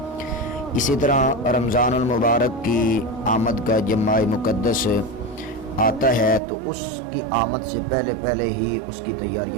اسی طرح رمضان المبارک کی آمد کا جب ماہ مقدس آتا ہے تو اس کی آمد سے پہلے ہی اس کی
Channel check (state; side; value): drops out; left; at 6.4 s